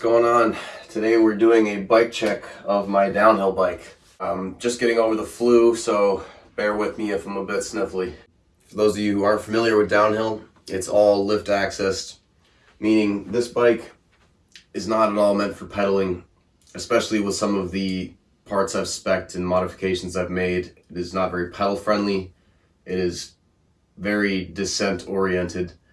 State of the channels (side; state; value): both; identical; correlation 1.00